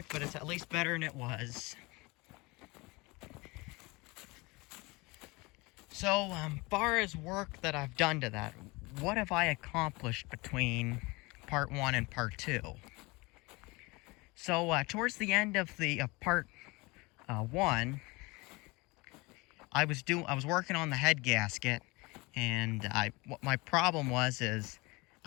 but it's at least better than it was. So, far as work that I've done to that, what have I accomplished between part 1 and part 2? So, towards the end of the part 1, I was working on the head gasket, and what my problem is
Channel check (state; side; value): quieter; right; 24.6 dB